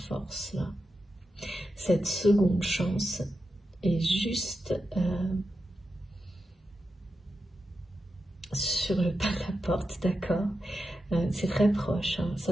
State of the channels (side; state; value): both; normal; correlation 0.89